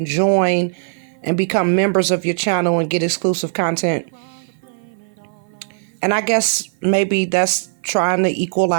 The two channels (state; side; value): silent; left; 57 dB below the other